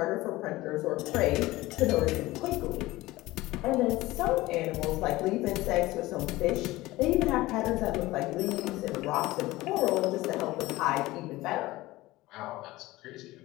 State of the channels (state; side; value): quieter; right; 18.6 dB